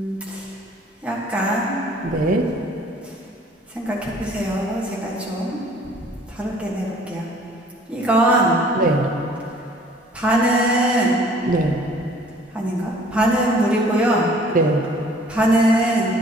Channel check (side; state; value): both; normal; correlation 0.55